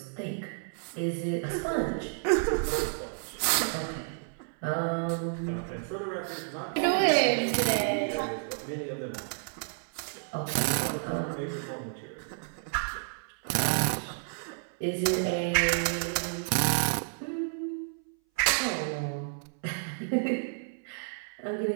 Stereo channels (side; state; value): left; silent; 57 dB below the other